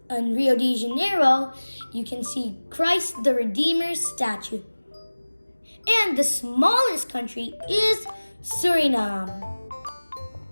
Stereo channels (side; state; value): both; inverted; correlation -1.00